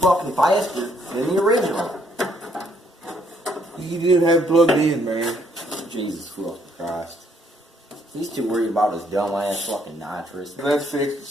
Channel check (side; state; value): both; normal; correlation 0.69